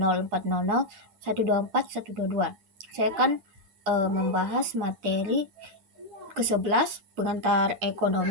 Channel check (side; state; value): left; late; 8.6 ms